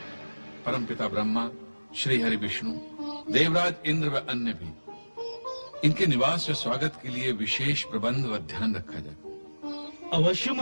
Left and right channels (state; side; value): inverted; both; correlation -1.00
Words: परमपिता ब्रह्मा, श्री हरि विष्णु, देवराज इंद्र व अन्य भी। इनके निवास व स्वागत के लिए विशेष प्रबंध व ध्यान रखा जाए। अवश्य